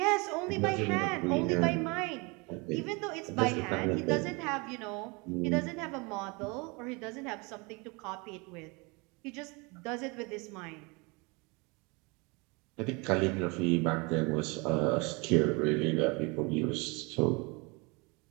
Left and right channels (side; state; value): left; quieter; 28.5 dB